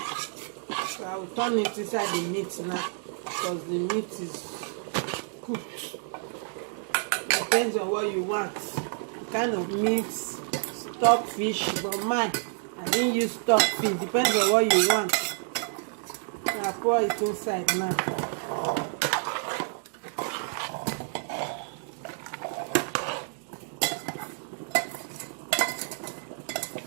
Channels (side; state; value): left; silent; 59 dB below the other